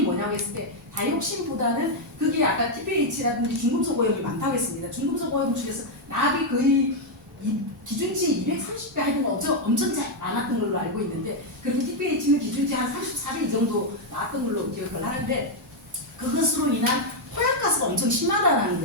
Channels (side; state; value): both; normal; correlation 0.00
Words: 뭐냐고 했을 때 다이옥신보다는 그게 아까 TPH라든지 중금속 오염이 많다고 했습니다. 중금속 오염 중에서 납이 거의 기준치 230배 하여튼 엄청 잘 나왔던 걸로 알고 있는데 그리고 TPH는 기준치 한 34배 이 정도 나왔던 걸로 기억을 하는데 그것으로 인한 토양가스가 엄청 심하다는